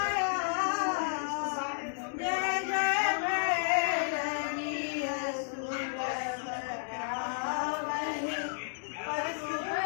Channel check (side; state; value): right; silent; digital silence